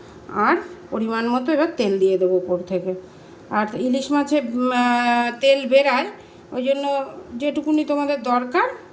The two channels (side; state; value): both; identical; correlation 1.00